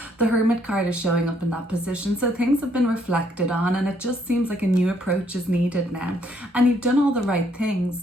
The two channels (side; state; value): both; normal; correlation 0.69